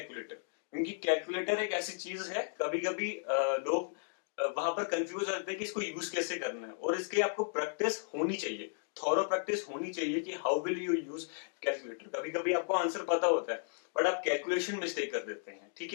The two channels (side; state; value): right; silent; digital silence